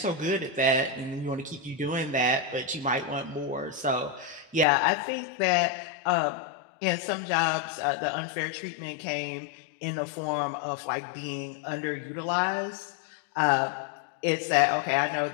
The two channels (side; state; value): right; drops out; at 4.7 s